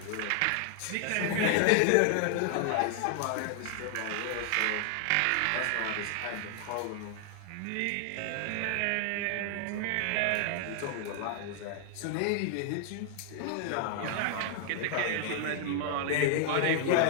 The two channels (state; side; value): different; both; correlation 0.00